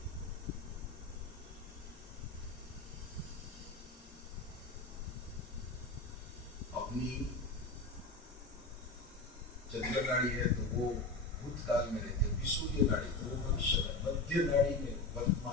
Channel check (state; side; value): quieter; right; 3.2 dB